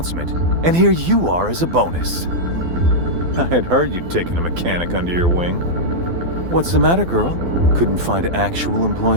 and here you are as a bonus. I had heard you'd taken a mechanic under your wing. What's the matter, girl? Couldn't find actual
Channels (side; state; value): left; late; 12 ms